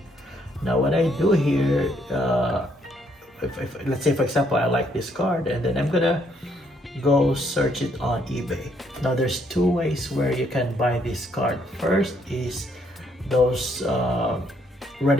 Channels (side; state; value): both; normal; correlation 0.70